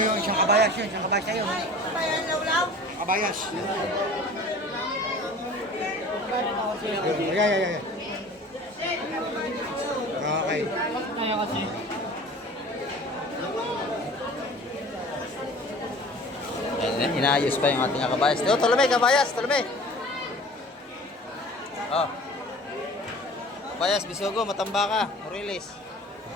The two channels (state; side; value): normal; both; correlation 0.44